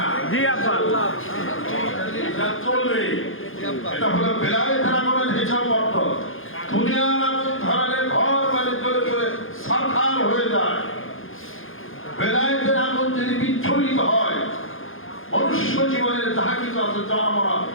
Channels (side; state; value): right; late; 0.59 ms